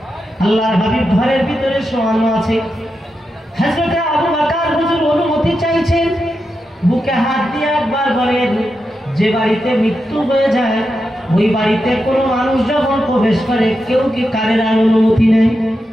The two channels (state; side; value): normal; both; correlation 0.88